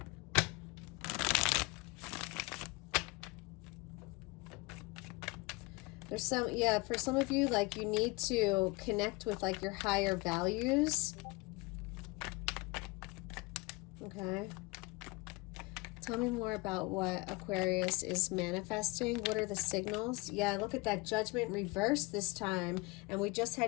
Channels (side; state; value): right; quieter; 25.5 dB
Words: There's for some of you, like you need to connect with like your higher values. Okay. Tell me more about what Aquarius is manifesting. What are the signals? Yeah, look at that Judgment reverse this time. And we just